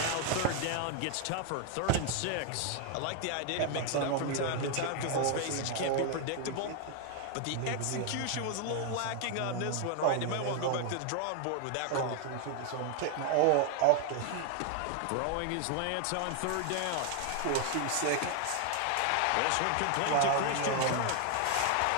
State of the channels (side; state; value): both; different; correlation 0.00